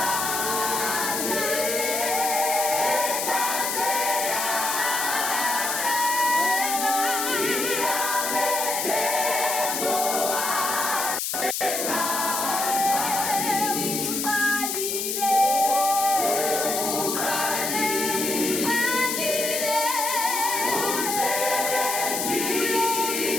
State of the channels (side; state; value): left; noise; hiss, 1 dB below the sound